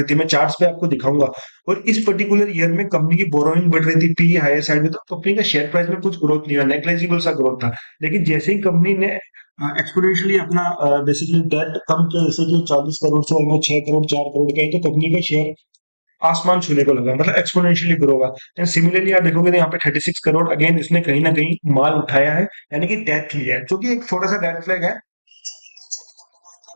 थी, मैं चार्ट्स पे आपको दिखाऊंगा। और इस पर्टिकुलर ईयर में कंपनी की बोरोइंग बढ़ रही थी, पी हायर साइड में, तो कंपनी का शेयर प्राइस में कुछ ग्रोथ नहीं हुआ, नेग्लेजिबल सा ग्रोथ था। लेकिन जैसे ही कंपनी ने एक्सपोनेंशियली अपना बेसिकली डेट कम किया, जैसे कि 40 करोड़ से ऑलमोस्ट 6 करोड़ 4 करोड़ का है, तो कंपनी का शेयर आसमान छूने को लगा, मतलब एक्सपोनेंशियली ग्रो होगा। एंड सिमिलरली आप देखोगे तो यहाँ पे 36 करोड़ अगेन इसने कहीं ना कहीं माल उठाया है, यानी कि डेथ लिया है, जो कि एक छोटा सा डेथ फ्लैग है।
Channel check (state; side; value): inverted; both; correlation -1.00